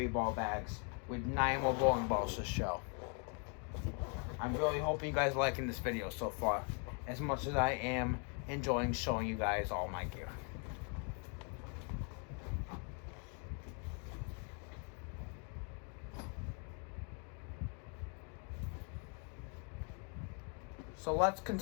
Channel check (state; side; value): quieter; right; 39.1 dB